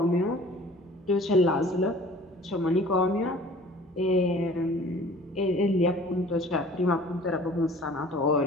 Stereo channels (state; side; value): normal; both; correlation 0.48